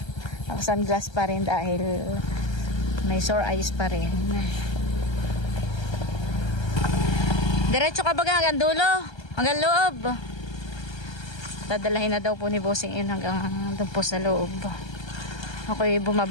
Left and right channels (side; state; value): right; late; 1.3 ms